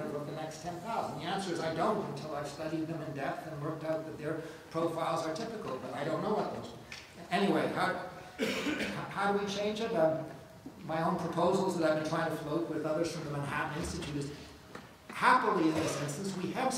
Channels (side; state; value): both; identical; correlation 1.00